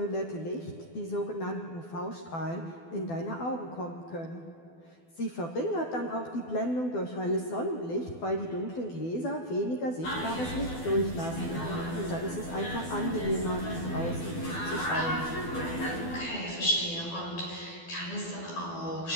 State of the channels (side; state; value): right; late; 12 ms